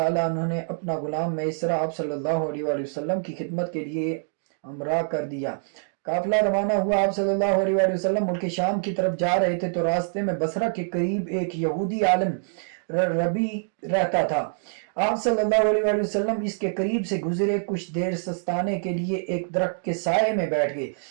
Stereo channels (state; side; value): silent; left; digital silence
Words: عنہ نے اپنا غلام میسرہ آپ صلی اللہ علیہ وآلہ وسلم کی خدمت کے لیے ہمراہ کر دیا۔ قافلہ روانہ ہوا۔ آپ صلی اللہ علیہ وآلہ وسلم ملک شام کی طرف جا رہے تھے تو راستے میں بصرہ کے قریب ایک یہودی عالم ربی رہتا تھا۔ آپ صلی اللہ علیہ وآلہ وسلم اس کے قریب سے گزرے، کچھ دیر سستانے کے لیے ایک درخت کے سائے میں بیٹھ گئے۔